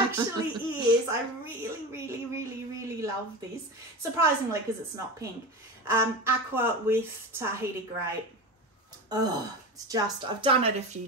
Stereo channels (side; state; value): both; normal; correlation 0.25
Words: is. I really, really, really, really love this. Surprisingly, because it's not pink. Aqua with Tahiti Grey. Oh, it's just, I've done it a few